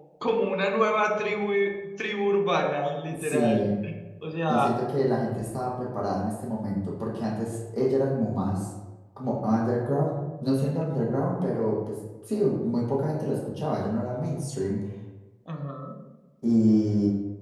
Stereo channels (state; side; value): identical; both; correlation 1.00